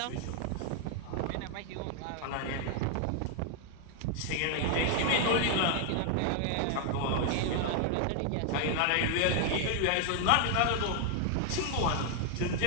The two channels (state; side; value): different; both; correlation 0.00